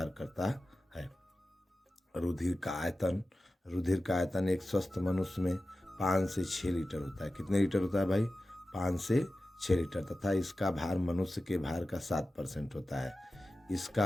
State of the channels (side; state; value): both; normal; correlation 0.94